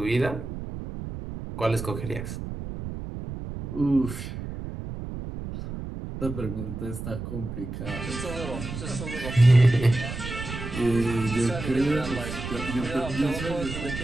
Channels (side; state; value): right; noise; rumble, 8 dB below the sound